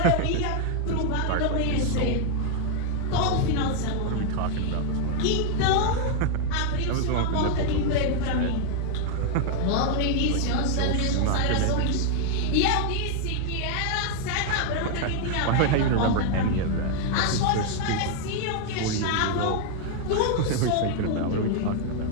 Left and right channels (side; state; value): both; different; correlation 0.00